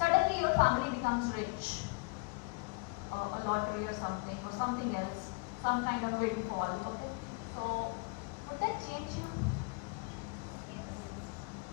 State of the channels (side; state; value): right; quieter; 32.4 dB